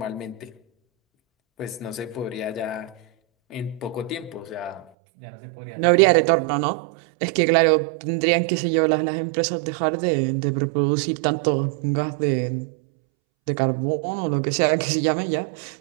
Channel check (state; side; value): drops out; left; at 4.9 s